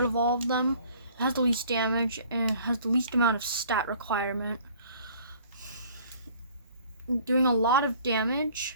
of all of them. It has the least damage and has the least amount of stat requirement. Doing a lot of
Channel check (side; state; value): both; inverted; correlation -0.53